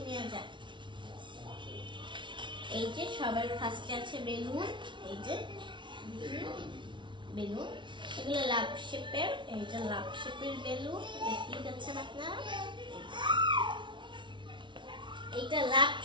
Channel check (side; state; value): left; late; 0.24 ms